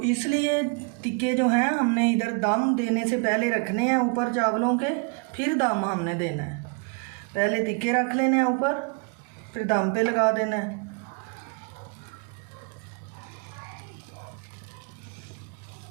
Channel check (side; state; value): left; quieter; 35.3 dB